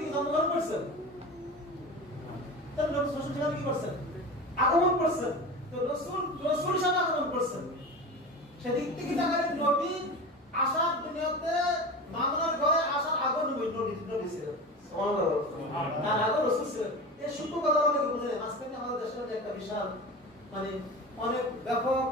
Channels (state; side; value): normal; both; correlation 0.30